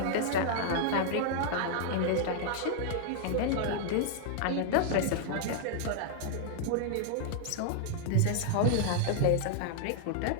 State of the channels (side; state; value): both; different; correlation -0.01